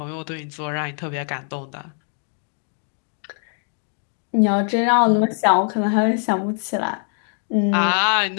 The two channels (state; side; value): silent; right; 60 dB below the other